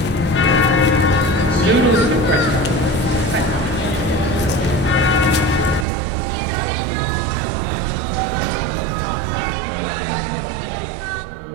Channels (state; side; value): drops out; left; at 5.9 s